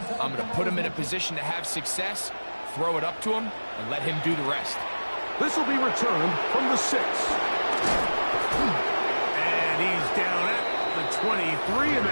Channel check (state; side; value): inverted; both; correlation -1.00